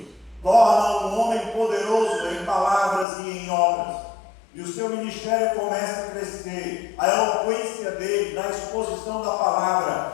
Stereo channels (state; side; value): drops out; right; at 3.1 s